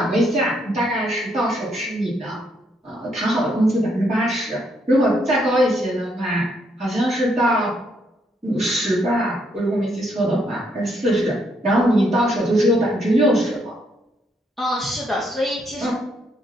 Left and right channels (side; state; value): both; normal; correlation 0.74